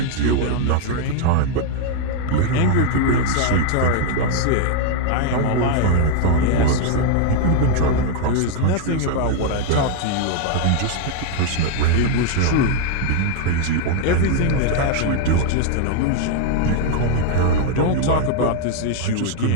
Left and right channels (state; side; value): different; both; correlation 0.00